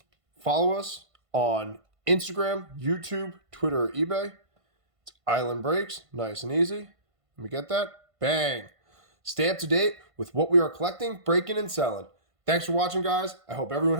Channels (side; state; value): left; late; 1.5 ms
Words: follow us on Instagram, YouTube, Twitter, or eBay. It's Island Breaks, nice and easy. Let me get that. Bang. Stay up to date with what we are collecting, breaking, and selling. Thanks for watching, guys. I hope everyone